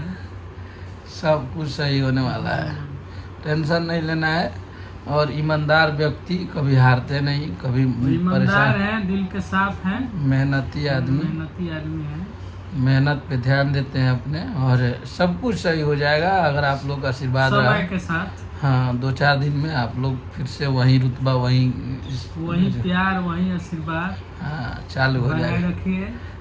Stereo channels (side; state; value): both; identical; correlation 1.00